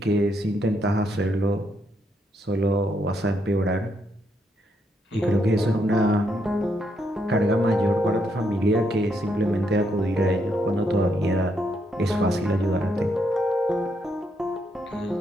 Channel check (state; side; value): normal; both; correlation 0.76